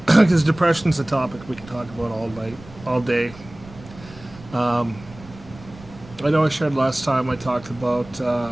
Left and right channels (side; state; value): right; noise; rumble, 19 dB below the sound